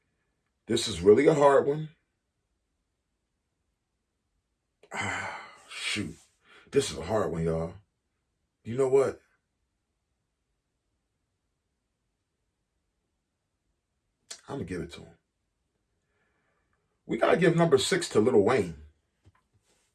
This is really a hard one. Shoot. This is a hard one, y'all. You know what? I'm going to give it to him. We got to give number 6 to Lil Wayne.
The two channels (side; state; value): both; identical; correlation 1.00